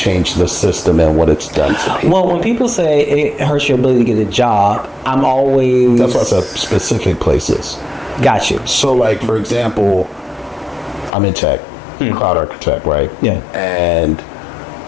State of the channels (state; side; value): drops out; right; at 11.1 s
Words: the system and what it's done to people. Well, when people say it hurts your ability to get a job, I'm always. That's why I said specific places. Got you. So, like for example, I'm in tech, cloud architect, right? Yeah. And